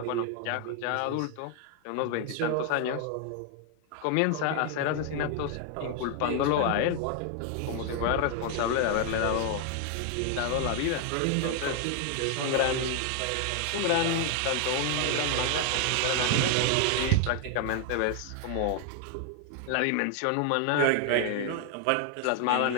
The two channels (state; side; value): different; both; correlation 0.00